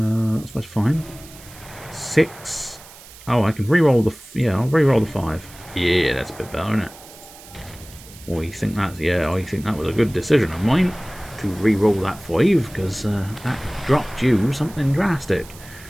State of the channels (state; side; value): noise; right; hiss, 20 dB below the sound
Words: much fine. 6. Oh, I can re-roll the... Yeah, I'll re-roll the 5. Yeah, that's a bit better, isn't it? Or you think that's... Yeah, I think that was a good decision of mine to re-roll that 5, because that dropped you something drastic.